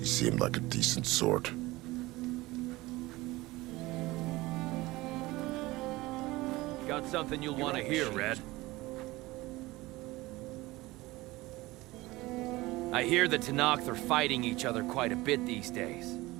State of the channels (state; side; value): quieter; left; 20.0 dB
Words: seemed like a decent sort. Got something you'll want to hear, Red. I hear the Tanakh are fighting each other quite a bit these days.